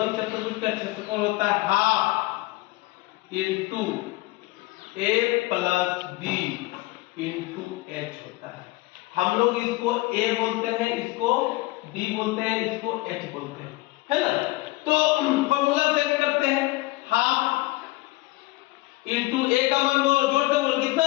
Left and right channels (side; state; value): right; quieter; 20.8 dB